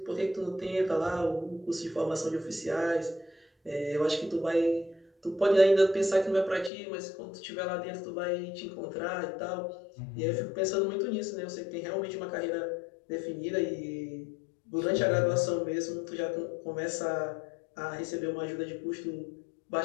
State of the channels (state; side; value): drops out; right; at 6.7 s